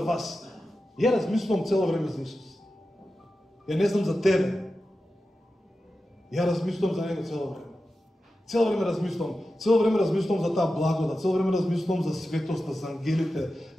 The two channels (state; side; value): normal; both; correlation 0.92